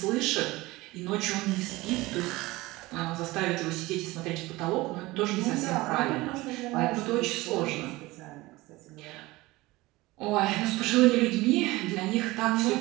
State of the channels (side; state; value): left; quieter; 20.2 dB